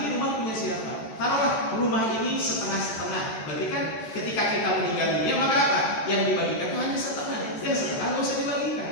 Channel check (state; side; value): late; right; 14 ms